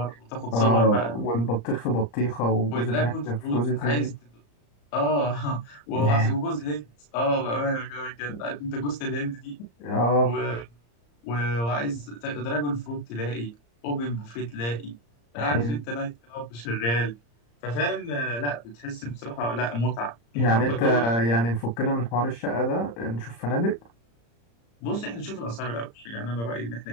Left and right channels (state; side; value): late; right; 34 ms